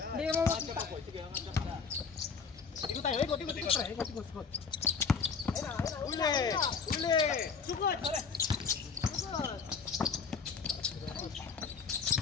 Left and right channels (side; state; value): right; quieter; 5.6 dB